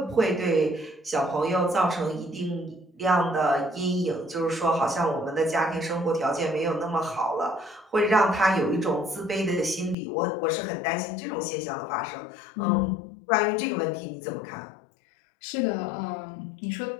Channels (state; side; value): drops out; right; at 10.0 s